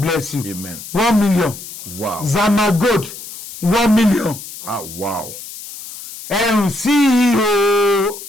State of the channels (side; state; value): left; noise; hiss, 12 dB below the sound